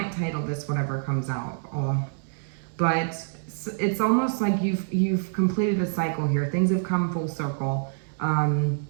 title this whatever comes out. But it's almost like you've completed a cycle here. Things have come full circle.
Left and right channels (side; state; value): left; silent; digital silence